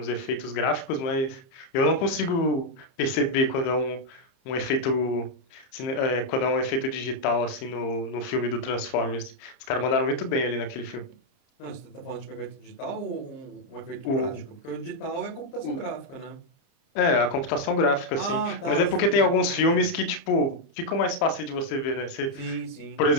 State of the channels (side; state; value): right; late; 30 ms